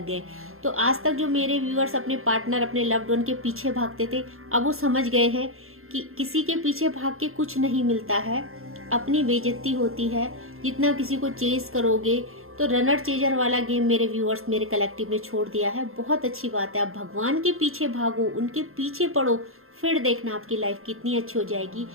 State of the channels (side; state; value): left; late; 0.61 ms